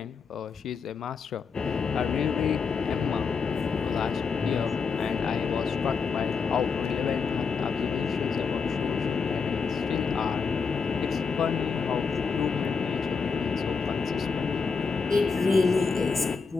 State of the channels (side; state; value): right; quieter; 5.3 dB